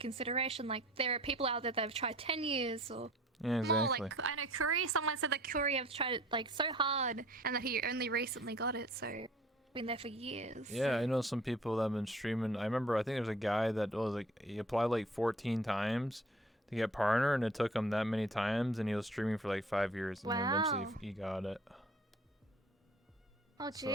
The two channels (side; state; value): both; normal; correlation 0.50